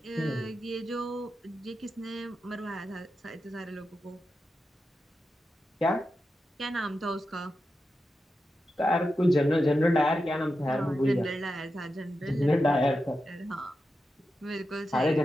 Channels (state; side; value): normal; both; correlation 0.89